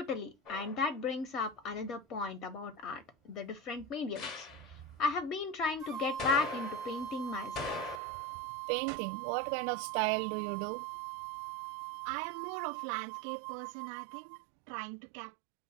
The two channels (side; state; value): left; drops out; at 8.0 s